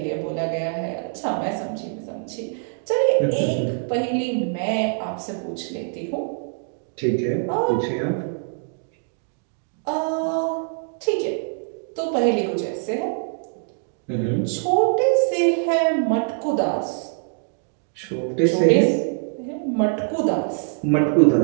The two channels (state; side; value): silent; left; 63 dB below the other